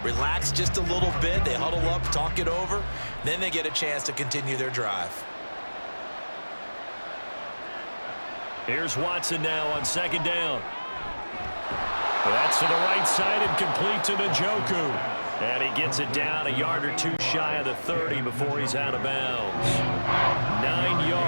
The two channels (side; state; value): both; inverted; correlation -1.00